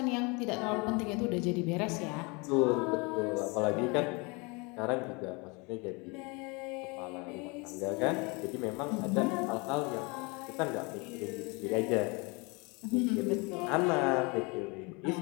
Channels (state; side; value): quieter; right; 28.7 dB